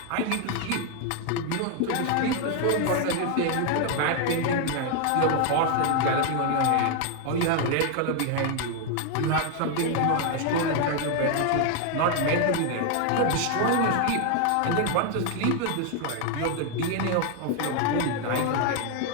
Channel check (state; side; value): different; both; correlation 0.01